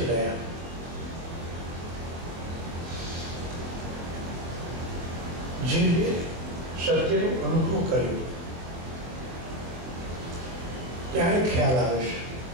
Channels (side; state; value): left; late; 23 ms